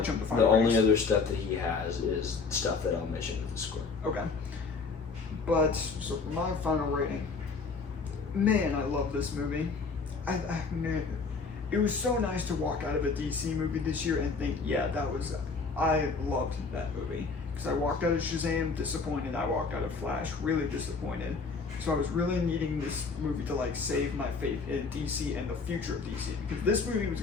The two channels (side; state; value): right; quieter; 4.6 dB